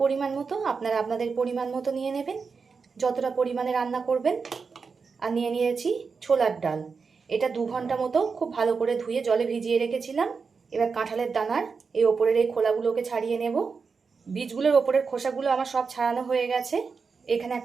পরিমাণ মতো, আপনারা আপনাদের পরিমাণ মতো নিয়ে নেবেন যতটা পরিমাণে রান্না করবেন। আর নিয়ে নিয়েছি ছোলার ডাল, এটা 2 ঘন্টা মতো খুব ভালো করে ধুয়ে জলে ভিজিয়ে রেখেছিলাম। এবার কাঁঠালের দানার এই ওপরের এই খোলাগুলোকে ছাড়িয়ে নেব। বীজগুলোর ওপরের খোসাগুলো আমার সব ছাড়ানো হয়ে গেছে। এখানে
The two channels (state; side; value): quieter; left; 5.1 dB